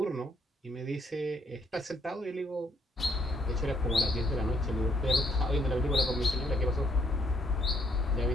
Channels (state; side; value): normal; both; correlation 0.70